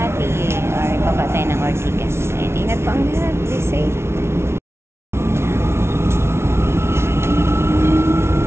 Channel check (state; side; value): late; left; 0.12 ms